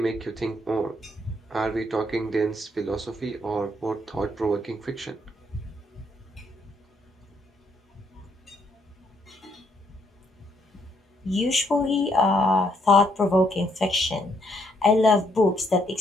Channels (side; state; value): both; normal; correlation 0.72